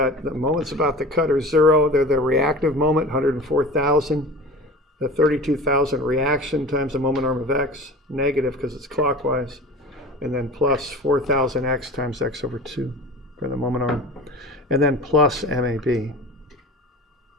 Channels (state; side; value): normal; both; correlation 0.37